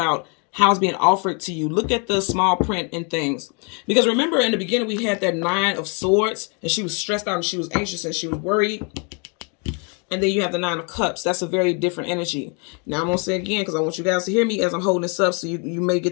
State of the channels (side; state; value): right; quieter; 35.3 dB